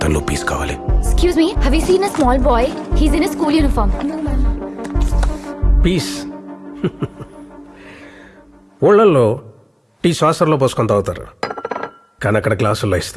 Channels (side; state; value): both; identical; correlation 1.00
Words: piece కావాలి. Excuse me, have you seen a small boy? He's in a school uniform. Piece. ఊళ్ళల్లో టీ శ్వాసంలో పోసుకొని తాగుతారు, కానీ అక్కడ గ్లాసుల్లో